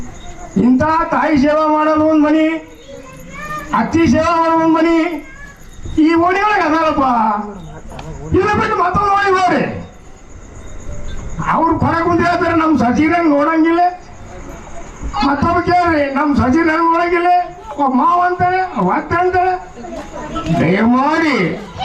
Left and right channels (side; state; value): both; identical; correlation 1.00